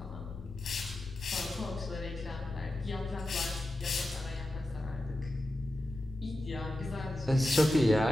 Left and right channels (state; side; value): noise; left; rumble, 16 dB below the sound